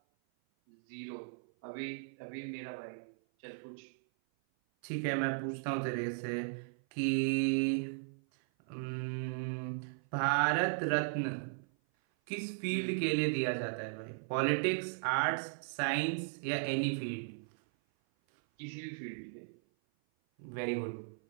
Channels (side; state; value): left; silent; 53 dB below the other